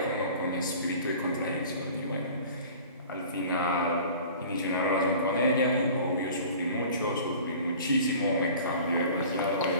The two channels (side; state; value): both; inverted; correlation -0.43